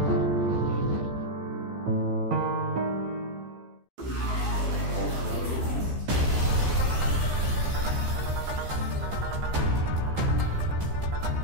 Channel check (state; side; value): late; left; 15 ms